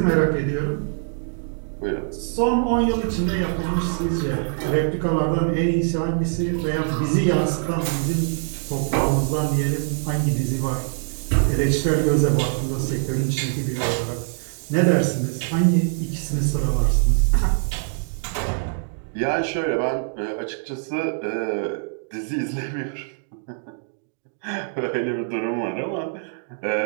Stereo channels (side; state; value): left; silent; digital silence